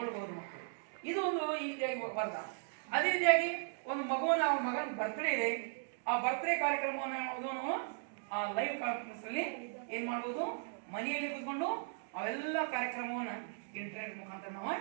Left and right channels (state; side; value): silent; left; digital silence